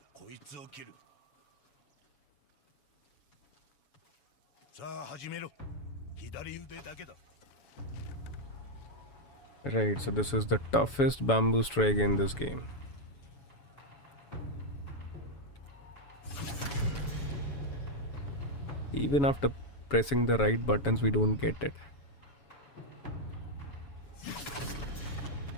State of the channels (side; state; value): right; late; 7.1 ms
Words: こいつを切る。さあ始めろ。左腕だけだ。 Right, so this is the toughest bamboo strike in this game. Even after pressing the right buttons, we don't get it.